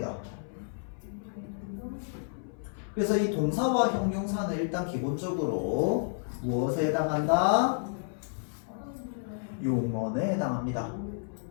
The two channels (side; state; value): right; silent; 57 dB below the other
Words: 그래서 이 동사와 형용사는 일단 기본적으로 무엇에 해당한다? 용언에 해당합니다.